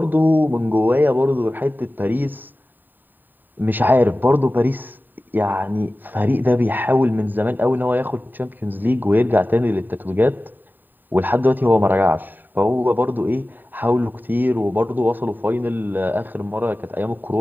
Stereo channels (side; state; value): left; late; 0.090 ms